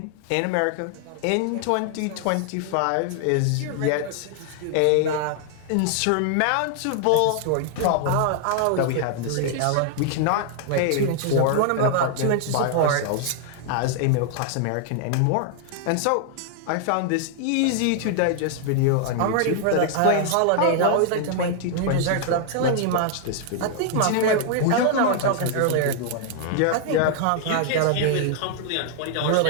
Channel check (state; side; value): different; both; correlation 0.00